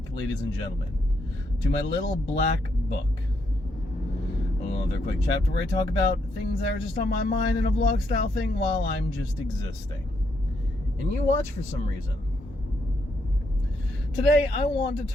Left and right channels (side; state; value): both; normal; correlation 0.77